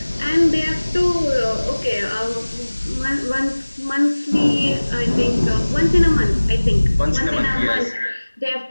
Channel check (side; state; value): both; inverted; correlation -1.00